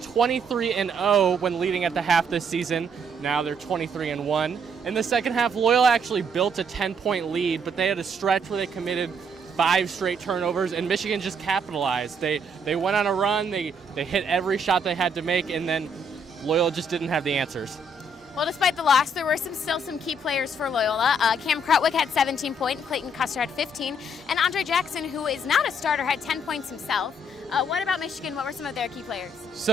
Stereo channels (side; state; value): both; normal; correlation 0.70